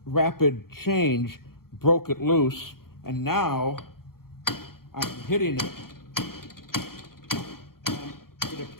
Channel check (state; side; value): late; right; 0.93 ms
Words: change broke it loose. And now I'm hitting it, and it